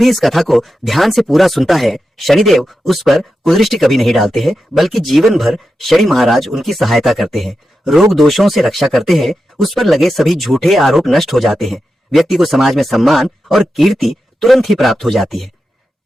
इस कथा को ध्यान से पूरा सुनता है, शनिदेव उस पर कुदृष्टि कभी नहीं डालते हैं, बल्कि जीवन भर शनि महाराज उनकी सहायता करते हैं, रोग दोषों से रक्षा करते हैं, उस पर लगे सभी झूठे आरोप नष्ट हो जाते हैं, व्यक्ति को समाज में सम्मान और कीर्ति तुरंत ही प्राप्त हो जाती है।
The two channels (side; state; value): both; normal; correlation 0.90